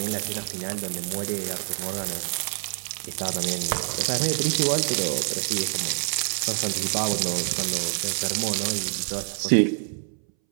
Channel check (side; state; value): left; silent; 61 dB below the other